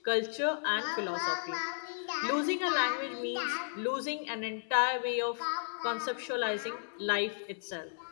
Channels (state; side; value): silent; right; digital silence